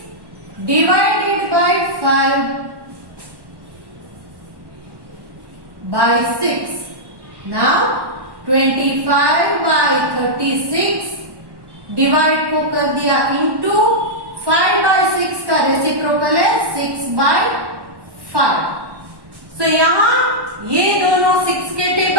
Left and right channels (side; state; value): left; late; 1.1 ms